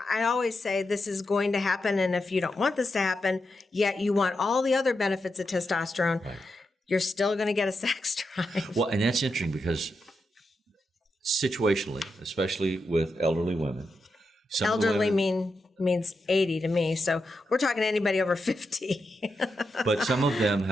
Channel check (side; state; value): both; normal; correlation 0.86